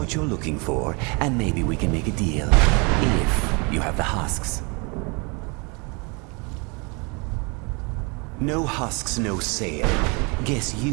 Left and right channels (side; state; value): left; quieter; 30.6 dB